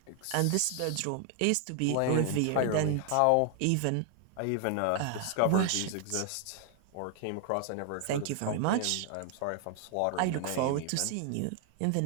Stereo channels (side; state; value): both; different; correlation 0.00